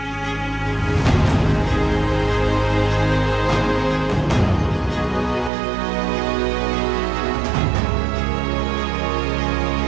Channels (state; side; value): drops out; left; at 5.5 s